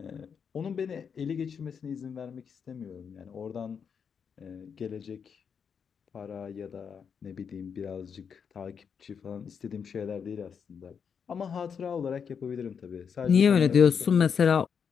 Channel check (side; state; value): right; quieter; 6.8 dB